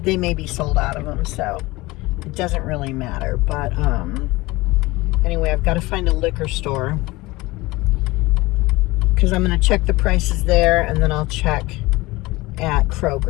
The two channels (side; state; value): right; quieter; 20.9 dB